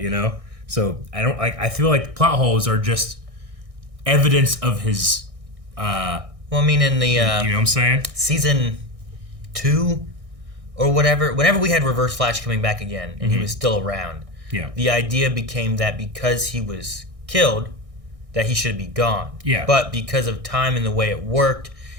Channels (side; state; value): left; late; 1.6 ms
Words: you know? So I feel like plot holes are just evidence of his well, I mean, in the you know what I'm saying? Season 2 or whatever, whenever we had Reverse Flash coming back again and he was still around, the idea became that because he was killed, that he should be gone. Yeah. But because of time and the way it worked,